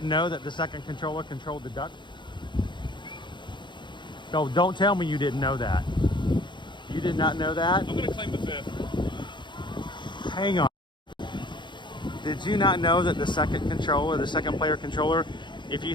know that the second controller controlled the duck. So don't tell me you didn't know that. You did not know that? I'm going to claim the 5th. Hang on. Did you not know that the second controller, the second player controller, if you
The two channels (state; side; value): late; right; 0.23 ms